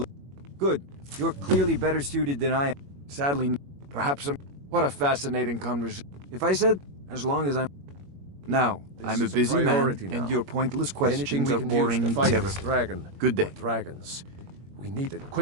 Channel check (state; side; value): late; left; 21 ms